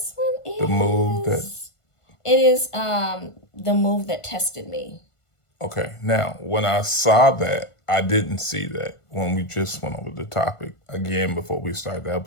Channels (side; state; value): right; late; 1.5 ms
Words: one is The Move That. It is The Move That Tested Me. Okay, now when I saw that, I didn't see that when we just went over the topic again before we started the